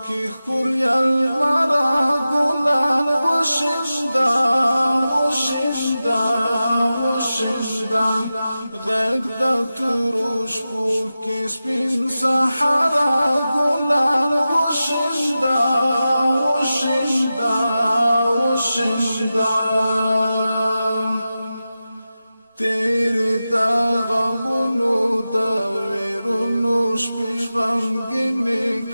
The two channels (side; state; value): both; inverted; correlation -0.93